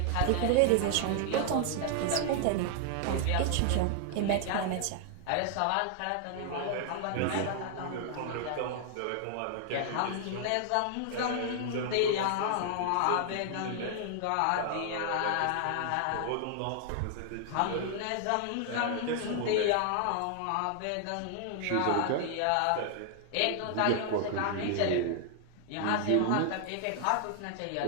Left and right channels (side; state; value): both; different; correlation 0.00